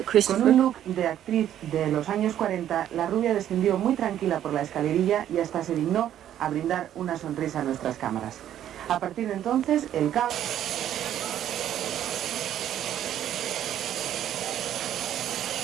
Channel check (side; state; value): left; quieter; 11.1 dB